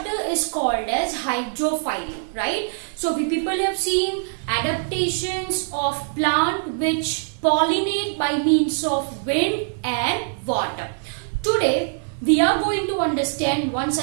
is called as hydrophily, right? So we people have seen adaptations of plant which pollinate by means of wind and water. Today we are going to understand once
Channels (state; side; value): silent; left; digital silence